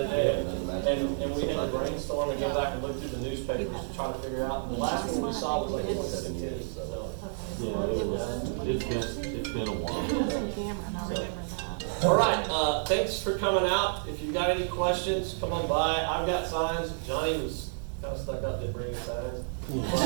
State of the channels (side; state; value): left; silent; digital silence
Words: day, and we had to brainstorm and go back and look through the newspapers to try to figure out. And the last one we saw was like 2017. So. Yeah, it's been a while. All right, thanks for coming out. If you've got any questions, come on by. I've got signs. Johnny was kind of stuck up, didn't bring any signs.